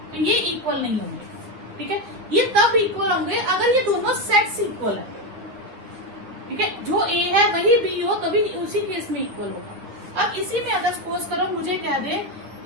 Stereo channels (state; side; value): late; left; 9.3 ms